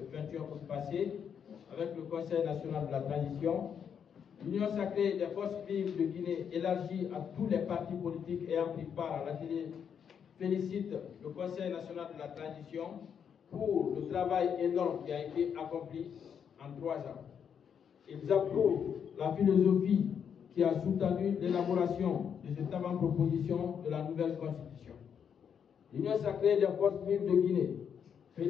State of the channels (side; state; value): right; quieter; 7.6 dB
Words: 21 août passés avec le Conseil national de la transition, l'Union sacrée des forces vives de Guinée élargie à tous les partis politiques ayant pris part à l'atelier félicite le Conseil national de la transition pour le travail énorme qui a été accompli en 3 ans. Ils approuvent la philosophie qui a soutenu l'élaboration de cette avant-proposition de la nouvelle Constitution. L'Union sacrée des forces vives de Guinée